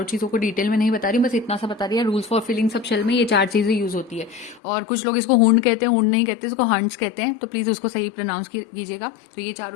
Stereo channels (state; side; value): drops out; right; at 4.6 s